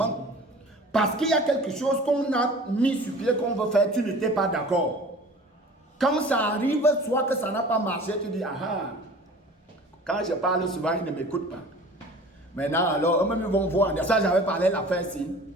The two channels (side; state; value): both; normal; correlation 0.43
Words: Parce qu'il y a quelque chose qu'on a mis sur pied qu'on veut faire, tu n'étais pas d'accord. Quand ça arrive, soit que ça n'a pas marché, tu dis, ah, quand je parle souvent, ils ne m'écoutent pas. Maintenant, alors, eux-mêmes ils vont voir, ça j'avais parlé la fin ci.